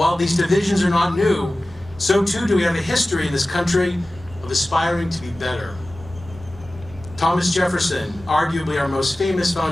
these divisions are not new, so too do we have a history in this country of aspiring to be better. Thomas Jefferson, arguably our most famous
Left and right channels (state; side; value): normal; both; correlation 0.96